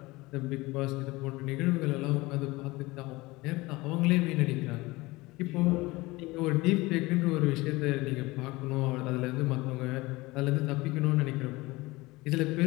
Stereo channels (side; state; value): right; quieter; 21.5 dB